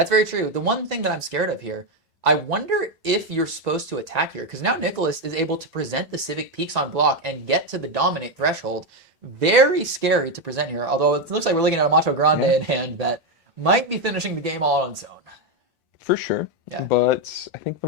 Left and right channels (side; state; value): both; normal; correlation 0.07